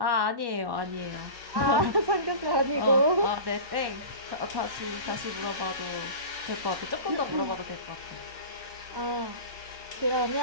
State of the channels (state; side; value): late; left; 1.1 ms